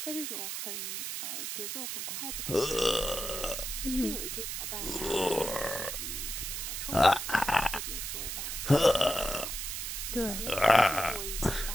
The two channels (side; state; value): right; noise; hiss, 4 dB below the sound